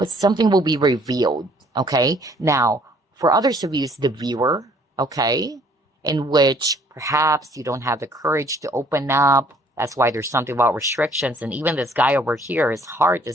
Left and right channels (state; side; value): normal; both; correlation 0.60